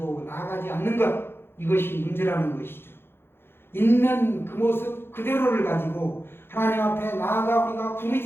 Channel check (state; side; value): late; right; 0.11 ms